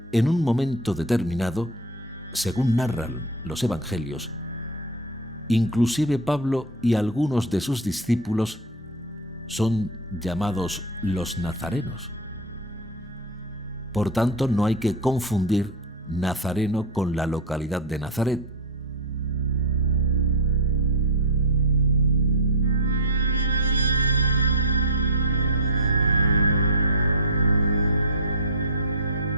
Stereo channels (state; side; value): normal; both; correlation 0.08